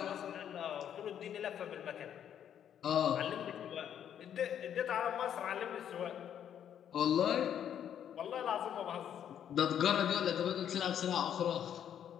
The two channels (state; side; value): quieter; right; 9.4 dB